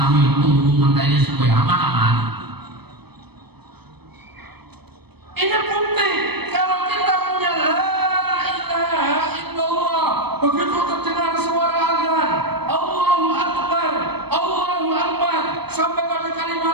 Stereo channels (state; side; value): late; left; 0.97 ms